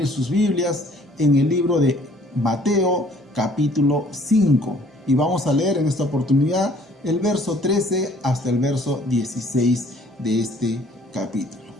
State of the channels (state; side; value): normal; both; correlation 0.57